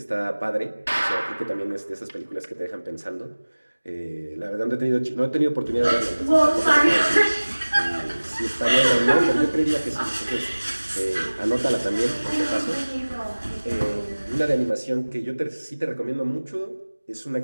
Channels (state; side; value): inverted; both; correlation -1.00